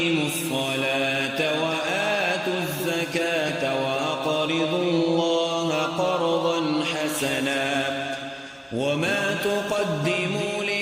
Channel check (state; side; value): identical; both; correlation 1.00